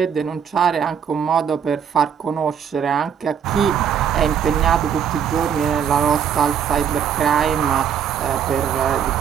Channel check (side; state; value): left; quieter; 8.1 dB